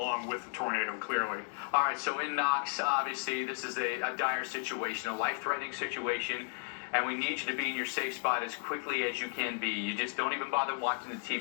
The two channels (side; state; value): right; silent; digital silence